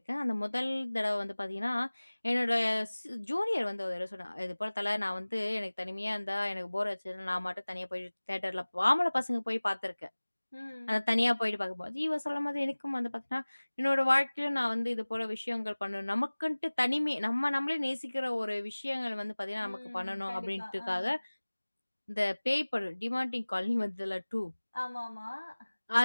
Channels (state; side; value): inverted; both; correlation -1.00